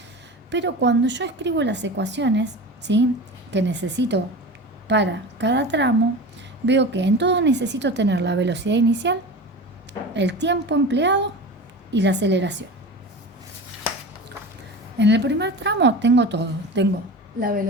Pero cuando yo escribo las ecuaciones, ¿sí?, que necesito para cada tramo, veo que en todo necesito tener la velocidad inicial, el tiempo empleado y la aceleración. En el primer tramo tengo todo. Tengo la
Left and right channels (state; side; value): normal; both; correlation 0.32